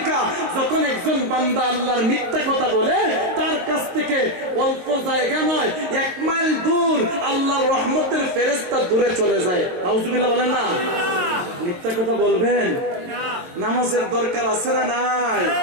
যখন একজন বান্দা আল্লাহর মিথ্যা কথা বলে তার কাছ থেকে অল্প জায়গা নয়, 1 মাইল দূর আল্লাহর রহমতের ফেরেশতা দূরে চলে যায়। নাউজুবিল্লাহ বলেন না? মিথ্যা কথা বলবেন? নামাজের দরকার আছে না নাই?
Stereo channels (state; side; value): late; left; 22 ms